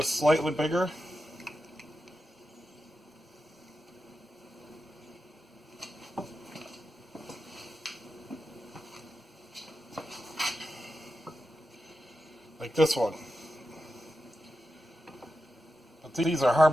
slightly bigger. Like this one. But these are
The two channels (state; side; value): normal; both; correlation 0.90